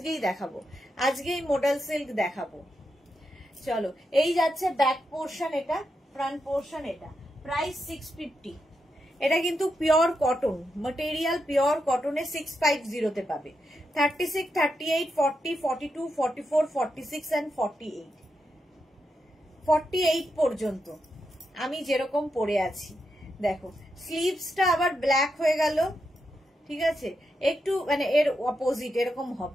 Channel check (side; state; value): both; normal; correlation 0.85